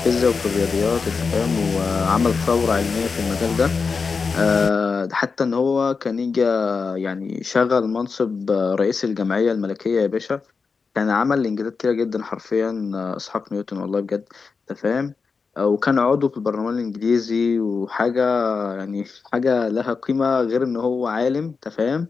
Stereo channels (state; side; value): quieter; right; 5.0 dB